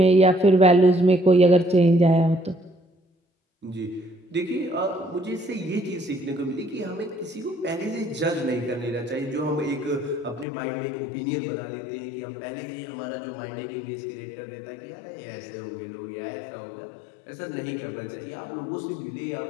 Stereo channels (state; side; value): drops out; right; at 10.5 s